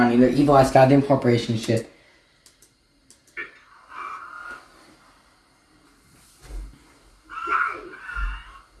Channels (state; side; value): identical; both; correlation 1.00